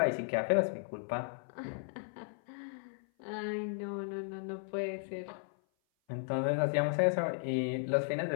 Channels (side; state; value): right; silent; 54 dB below the other